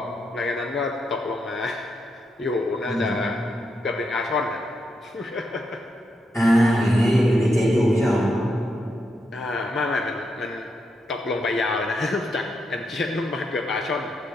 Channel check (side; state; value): both; normal; correlation 0.82